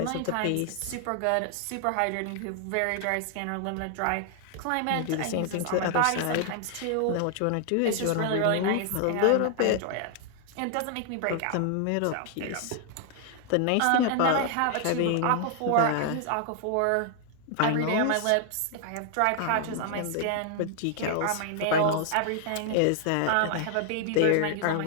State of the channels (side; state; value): both; different; correlation 0.00